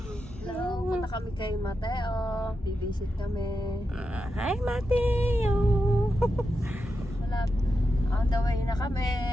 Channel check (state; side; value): normal; both; correlation 0.88